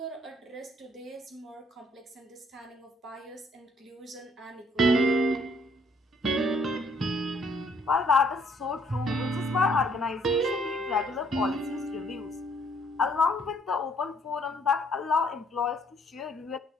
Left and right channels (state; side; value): normal; both; correlation 0.65